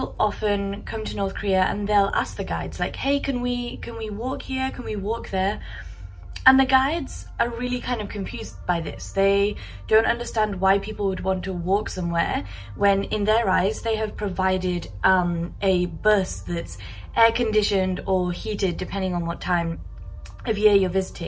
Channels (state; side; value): identical; both; correlation 1.00